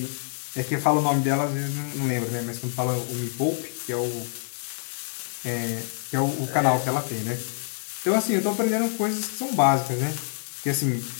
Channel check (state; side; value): silent; right; digital silence